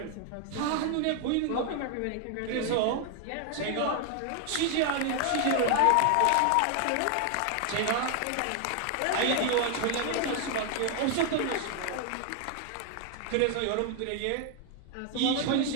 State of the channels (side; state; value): both; different; correlation 0.00